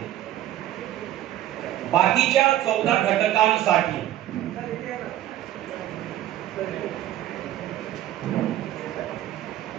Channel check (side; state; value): left; quieter; 13.1 dB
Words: बाकीच्या 14 घटकांसाठी